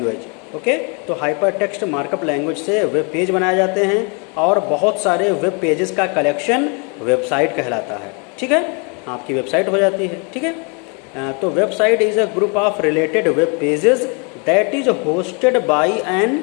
Okay, तो हाइपर टेक्स्ट मार्कअप लैंग्वेज से वेब पेज बनाए जाते हैं और बहुत सारे वेब पेजेस का कलेक्शन वेबसाइट कहलाता है. ठीक है, आपकी वेबसाइट हो जाती है. ठीक है, तो website is a group of related web pages that is hosted by an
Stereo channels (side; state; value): right; quieter; 34.7 dB